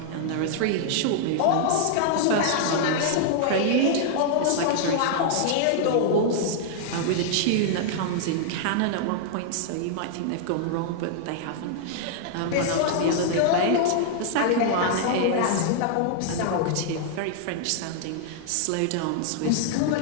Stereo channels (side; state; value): both; different; correlation -0.01